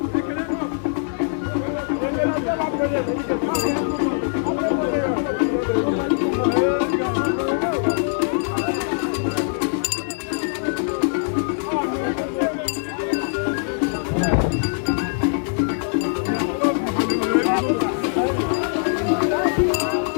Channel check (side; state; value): right; silent; digital silence